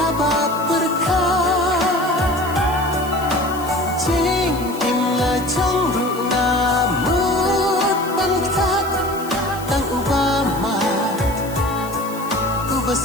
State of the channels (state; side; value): noise; left; hiss, 16 dB below the sound